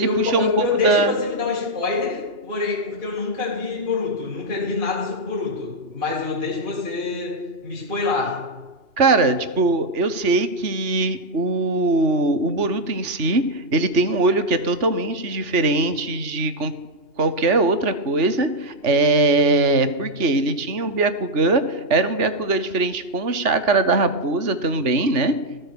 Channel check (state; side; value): late; left; 2.8 ms